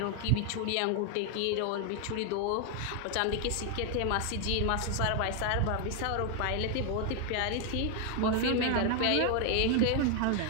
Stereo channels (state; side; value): different; both; correlation 0.00